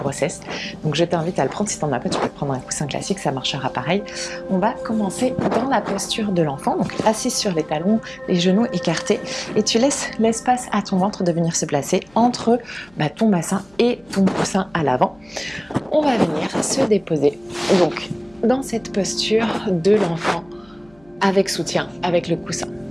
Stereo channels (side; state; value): left; noise; hum, 30 dB below the sound